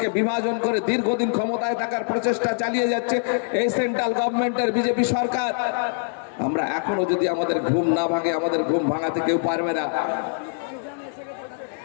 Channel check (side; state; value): right; silent; 63 dB below the other